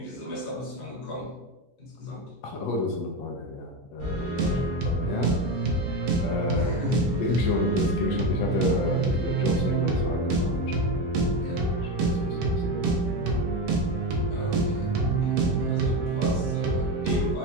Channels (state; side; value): normal; both; correlation 0.16